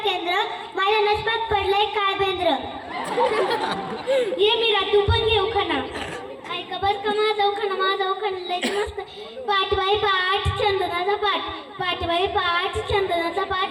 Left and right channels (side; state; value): both; identical; correlation 1.00